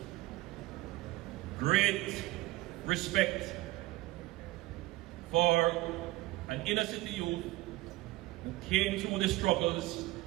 great respect for an inner city youth who came through the struggles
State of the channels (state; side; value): quieter; left; 18.7 dB